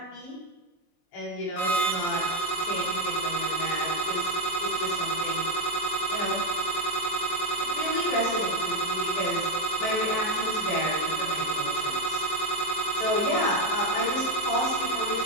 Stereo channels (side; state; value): right; late; 23 ms